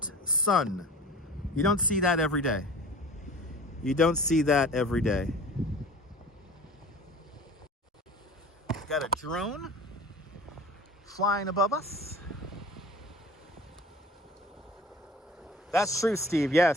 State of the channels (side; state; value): both; normal; correlation 0.42